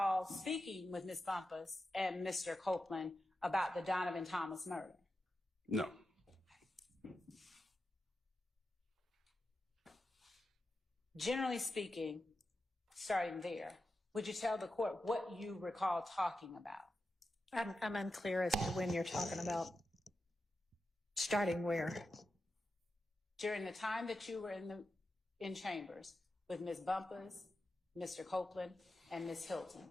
speaking with Ms. Bumpus and Mr. Copeland about the Donovan Thomas murder? No. Generally speaking, starting there, Would you tell the court what you recall talking about? I'm unclear as to when you're talking about. Starting where? During the time that you were in chambers with Ms. Bumpus, Mr. Copeland, and Ms. Hilton,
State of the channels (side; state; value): both; normal; correlation 0.90